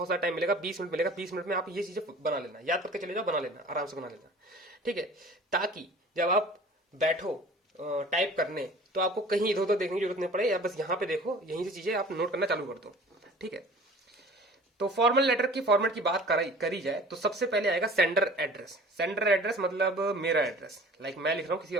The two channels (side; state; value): both; normal; correlation 0.45